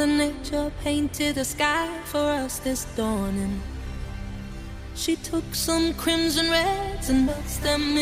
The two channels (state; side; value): identical; both; correlation 1.00